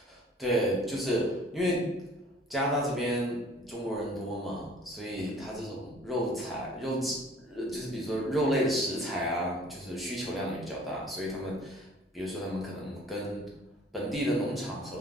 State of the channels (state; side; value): normal; both; correlation 0.51